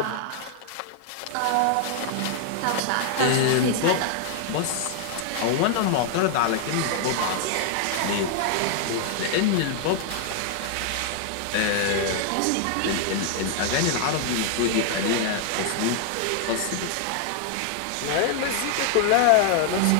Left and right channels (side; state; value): both; different; correlation 0.00